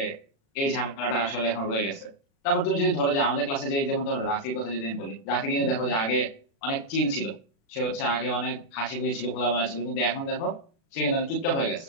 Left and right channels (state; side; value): late; right; 36 ms